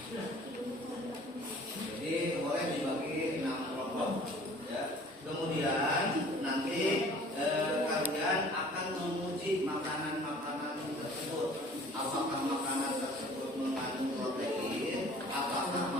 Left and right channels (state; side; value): normal; both; correlation 0.50